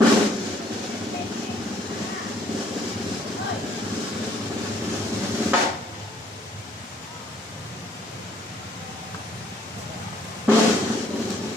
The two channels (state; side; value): normal; both; correlation 0.63